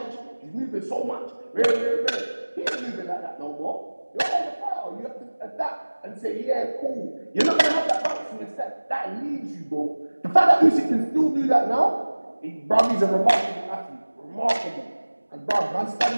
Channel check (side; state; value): both; inverted; correlation -1.00